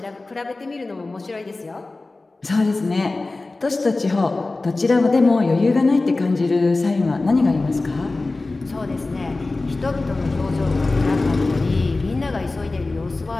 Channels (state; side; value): quieter; right; 3.3 dB